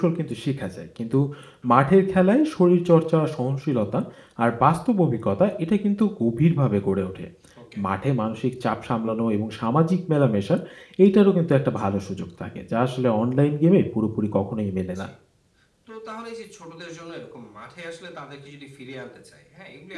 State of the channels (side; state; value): both; identical; correlation 1.00